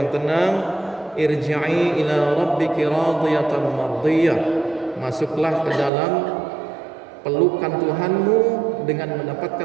tenang, irji'i ila rabbiki radiyatan mardiyah, masuklah ke dalam pelukan Tuhanmu dengan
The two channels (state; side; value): drops out; left; at 5.9 s